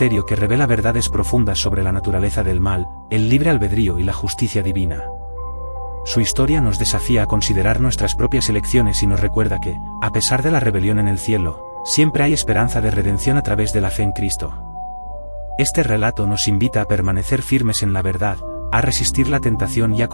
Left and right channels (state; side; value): inverted; both; correlation -1.00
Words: que revela verdades profundas sobre la naturaleza del mal, el libre albedrío y la justicia divina. Su historia nos desafía a considerar nuestras propias elecciones y nos recuerda que, a pesar de la rebelión en el cielo, siempre hay esperanza de redención a través de la fe en Cristo. Este relato nos invita a permanecer firmes en la verdad, a resistir la tentación y a